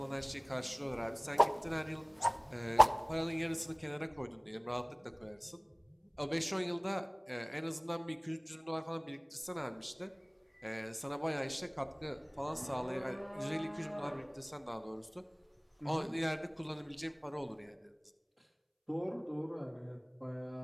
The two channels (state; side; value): identical; both; correlation 1.00